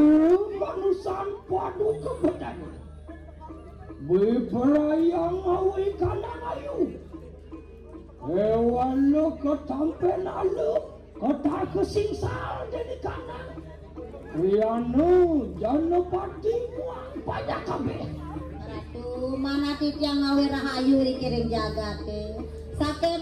manusan padu kebedan berperayaan awi kanan ayu hewan lo ketampen alu kota kesingsal dari kanan krianu janopati muang banyak kabeh ratu mana titiang awi rahayu dikiring jagate sake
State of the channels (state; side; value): identical; both; correlation 1.00